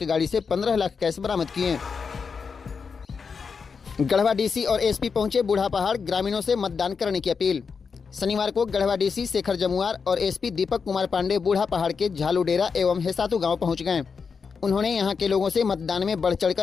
गाड़ी से 15 लाख कैश बरामद किए। गढ़वा डीसी और एसपी पहुंचे बूढ़ा पहाड़, ग्रामीणों से मतदान करने की अपील। शनिवार को गढ़वा डीसी शेखर जमुआर और एसपी दीपक कुमार पांडे बूढ़ा पहाड़ के झालूडेरा एवं हेसातू गांव पहुंच गए। उन्होंने यहां के लोगों से मतदान में बढ़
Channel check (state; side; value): quieter; right; 5.6 dB